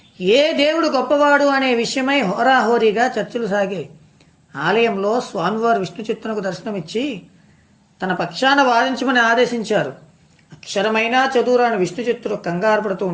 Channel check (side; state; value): both; identical; correlation 1.00